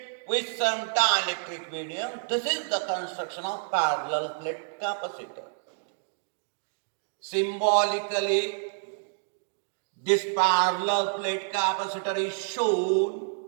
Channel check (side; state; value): left; silent; digital silence